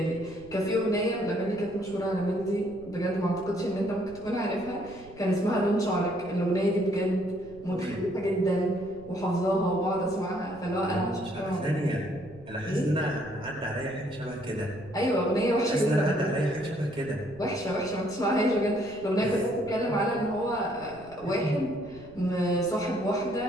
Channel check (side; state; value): right; noise; rumble, 20 dB below the sound